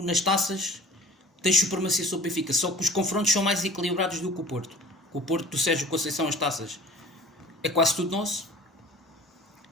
nas taças tens supremacia sobre o Benfica, só que os confrontos são mais equilibrados do que o Porto. Com o Porto do Sérgio Conceição, as taças é quase tudo nosso.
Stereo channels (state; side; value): normal; both; correlation 0.45